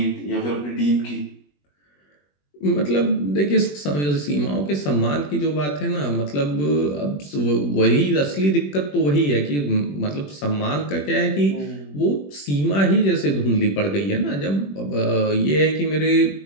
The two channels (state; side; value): late; right; 21 ms